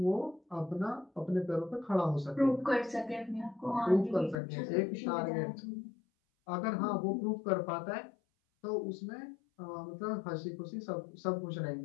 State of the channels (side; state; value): right; drops out; at 4.4 s